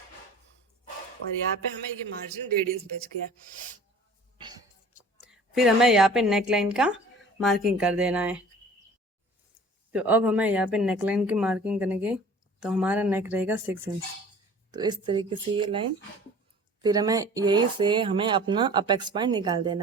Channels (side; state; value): both; normal; correlation 0.46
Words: और यहाँ पे हमें ये मार्जिन 1.5 इंच बच गया। फिर हमें यहाँ पे नेक लाइन का मार्किंग कर देना है। तो अब हमें यहाँ पे नेक लाइन की मार्किंग करेंगे। तो हमारा नेक रहेगा 6 इंच। तो इस तरीके से ये लाइन। फिर हमें यही से हमें अपना अपेक्स पॉइंट निकाल